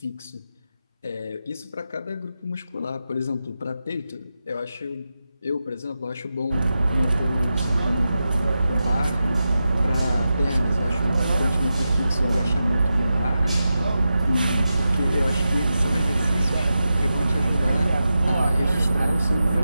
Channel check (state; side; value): inverted; both; correlation -0.90